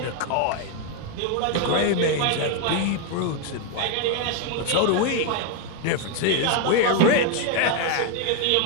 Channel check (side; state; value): both; different; correlation 0.01